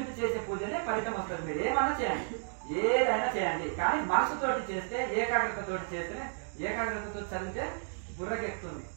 చేసే పూజనే ఫలితం వస్తుంది. మీరు ఏమన్నా చేయండి, ఏదైనా చేయండి, కానీ మనసుతోటి చేస్తే, ఏకాగ్రతతోటి చేస్తేనే, ఏకాగ్రతతో చదివితే బుర్రకెక్కుతుంది.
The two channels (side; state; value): left; silent; digital silence